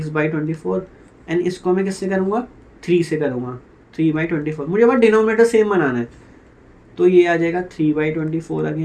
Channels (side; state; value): both; identical; correlation 1.00